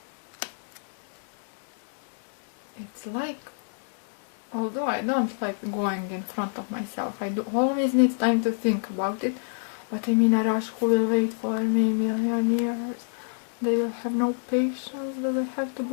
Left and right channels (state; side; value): silent; right; digital silence